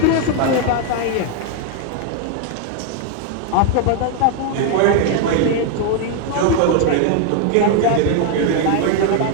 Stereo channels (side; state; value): both; different; correlation 0.00